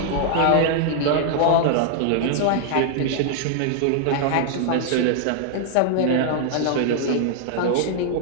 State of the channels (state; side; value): different; both; correlation 0.00